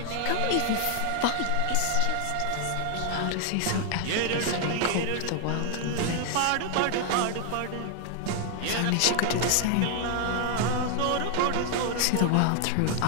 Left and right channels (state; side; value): different; both; correlation 0.00